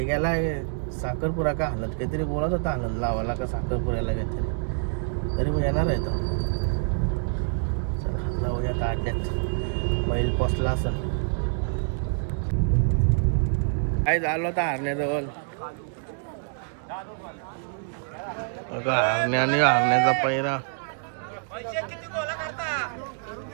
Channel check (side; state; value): left; silent; 61 dB below the other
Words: गेला साखरपुरा का हलत काहीतरी बोलत होता. हलत लावाला का साखरपुऱ्याला काहीतरी. तरी मग येणार आहे तो. चला जाऊया आता अड्ड्यात. बैल पोचला असं काय झालं होता हरण्याजवळ. हरण्या आणि हरण्याचा पैरा.